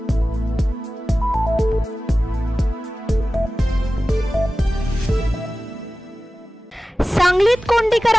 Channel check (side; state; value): both; normal; correlation 0.95